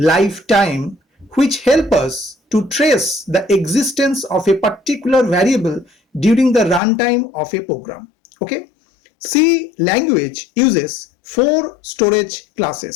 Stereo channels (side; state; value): right; drops out; at 6.8 s